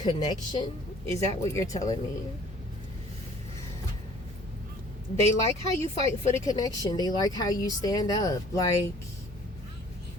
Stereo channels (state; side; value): normal; both; correlation 0.53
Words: Is that what you're telling me? They like how you fight for the connection. They like how you stand up. Like,